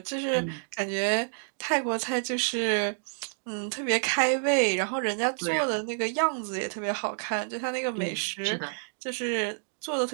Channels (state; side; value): silent; left; digital silence